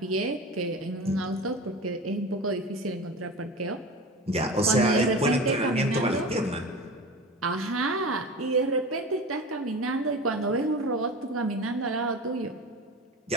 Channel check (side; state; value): both; normal; correlation 0.31